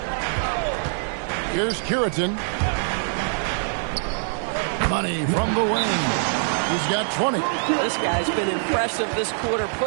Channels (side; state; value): left; silent; 63 dB below the other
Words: Here's Curitin. Money from the wing. He's got 20. This guy's been impressive this quarter,